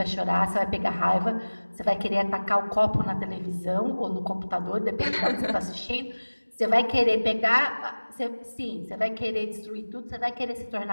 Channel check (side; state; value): both; inverted; correlation -1.00